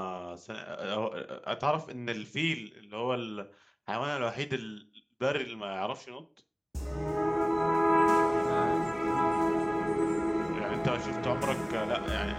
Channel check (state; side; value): identical; both; correlation 1.00